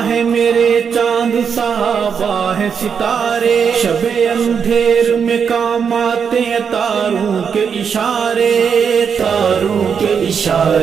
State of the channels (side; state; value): left; quieter; 6.7 dB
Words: ہے میرے چاند، صحابہ ہے ستارے، شب اندھیر میں کام آتے ہیں تاروں کے اشارے، تاروں کے